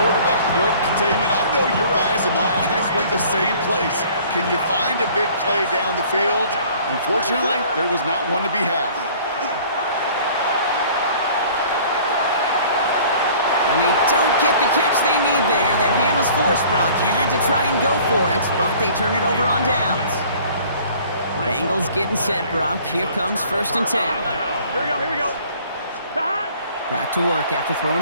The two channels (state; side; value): inverted; both; correlation -0.52